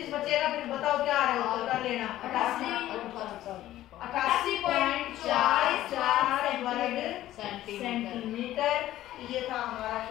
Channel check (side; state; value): right; quieter; 14.1 dB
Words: बचेगा, फिर बताओ क्या आ रहा है उत्तर, कर लेना। 88.44 वर्ग सेंटीमीटर, ये था हमारा